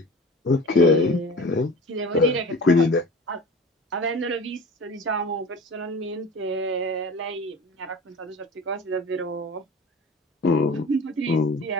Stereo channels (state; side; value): normal; both; correlation 0.38